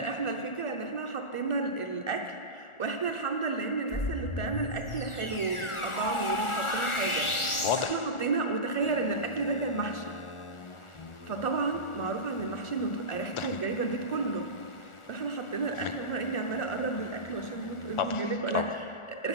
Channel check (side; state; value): right; late; 1.4 ms